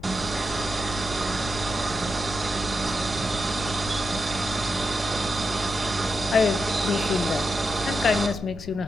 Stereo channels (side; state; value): left; noise; rumble, 13 dB below the sound